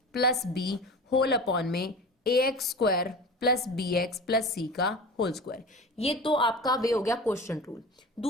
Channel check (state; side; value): normal; both; correlation 0.34